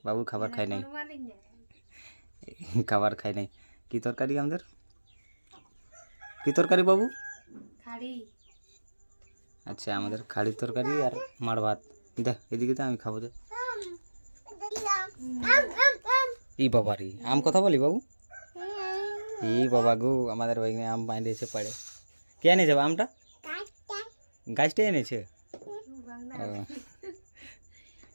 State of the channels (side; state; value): both; inverted; correlation -1.00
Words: বাবু খাবার খাই নাই, খাবার খাই নাই। কি তরকারি আমাদের? কি তরকারি বাবু? আচ্ছা, আমাদের খাড়ির তরকারি আর মাড় ভাত। দেখ এদিকে তো আমি খাবো। দে ই বাবা রে, আম কথা বলি বাবু? ই বাবা গো, আমাদের ওইখানে আম বাঁধিয়েছে পাড়ে। কে এনেছে আমটা? গাছটাই এনেছে।